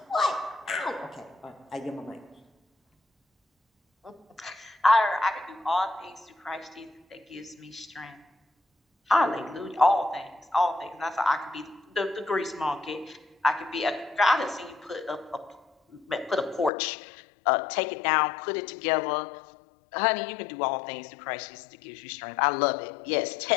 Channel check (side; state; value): right; drops out; at 16.7 s